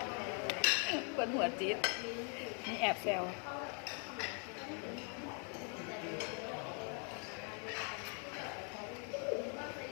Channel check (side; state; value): right; quieter; 39.4 dB